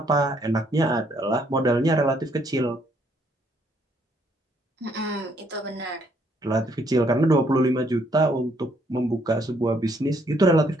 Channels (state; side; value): normal; both; correlation 0.68